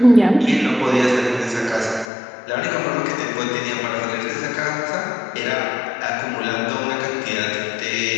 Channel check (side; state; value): right; drops out; at 2.1 s